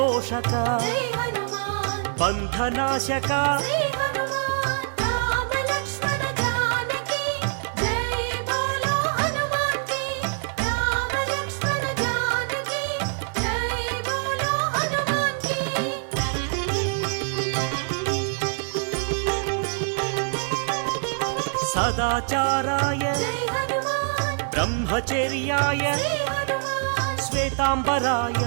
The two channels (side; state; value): left; silent; digital silence